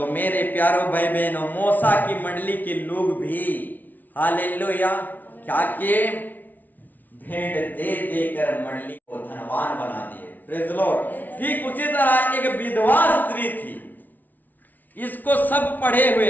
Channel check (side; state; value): right; late; 0.082 ms